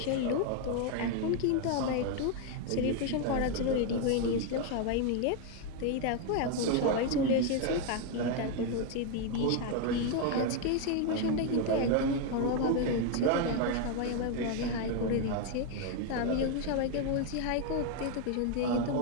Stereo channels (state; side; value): different; both; correlation 0.01